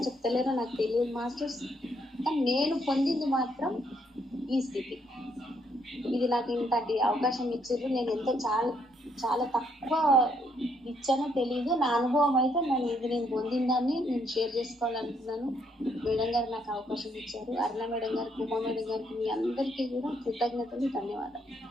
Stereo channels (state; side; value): normal; both; correlation 0.72